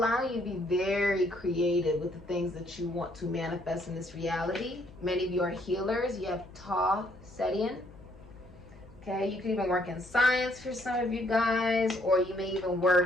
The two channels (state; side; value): noise; left; hum, 21 dB below the sound